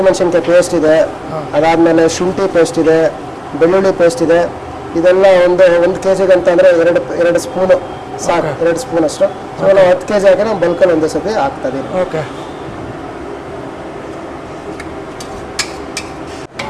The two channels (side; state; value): both; identical; correlation 1.00